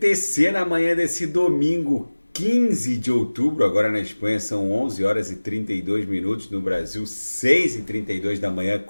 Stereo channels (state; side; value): inverted; both; correlation -1.00